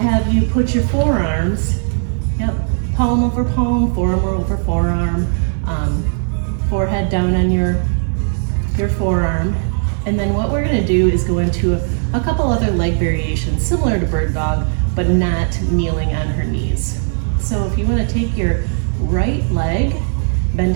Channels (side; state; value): left; silent; 65 dB below the other